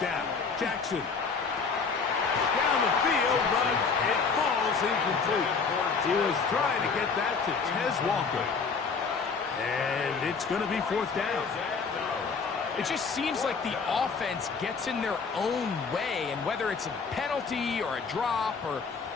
down, Jackson. Down the field, but it falls incomplete. He was trying to get that to Tez Walker. And it's going to be 4th down. It just seems like the offense gets in their own way, and whether it's a penalty or a drop or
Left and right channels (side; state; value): right; quieter; 5.2 dB